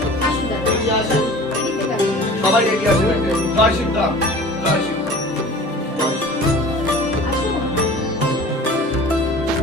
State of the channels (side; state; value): both; normal; correlation 0.42